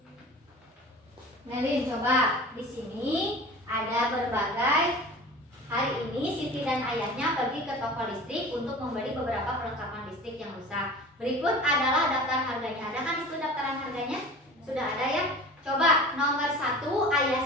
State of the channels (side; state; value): both; normal; correlation 0.39